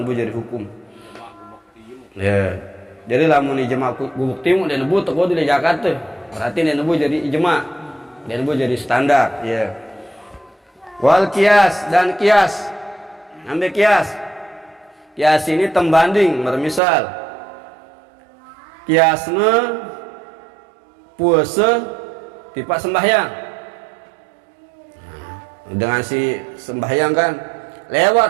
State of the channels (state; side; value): drops out; left; at 16.8 s